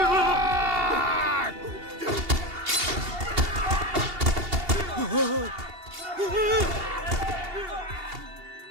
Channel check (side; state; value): left; late; 2.8 ms